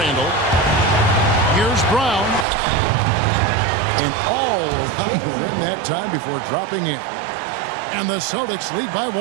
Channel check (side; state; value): left; drops out; at 2.5 s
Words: Here's Brown. And all around the rim that time before dropping in. And the Celtics lead by 1.